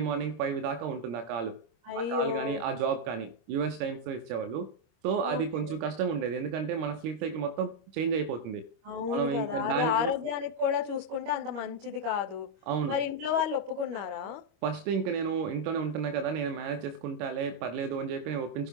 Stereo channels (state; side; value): late; left; 26 ms